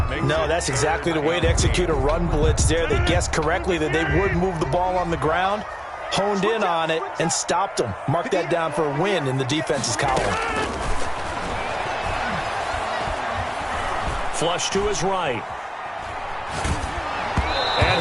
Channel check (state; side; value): identical; both; correlation 1.00